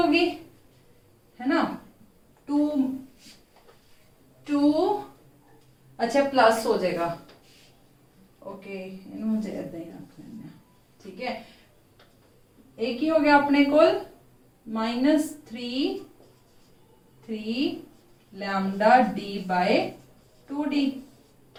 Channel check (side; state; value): both; identical; correlation 1.00